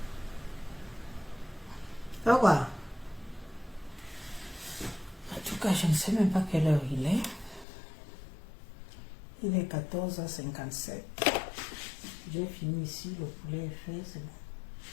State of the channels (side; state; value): right; drops out; at 7.7 s